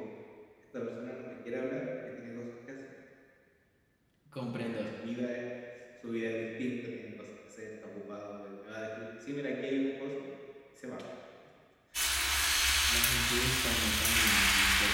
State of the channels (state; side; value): identical; both; correlation 1.00